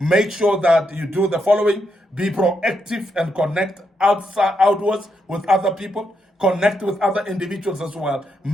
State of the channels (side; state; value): both; normal; correlation 0.81